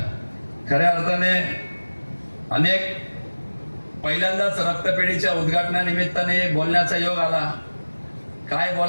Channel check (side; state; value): both; inverted; correlation -1.00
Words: खऱ्या अर्थाने अनेक पहिल्यांदाच रक्तपेढीच्या उद्घाटनानिमित्ताने बोलण्याचा योग आला. काय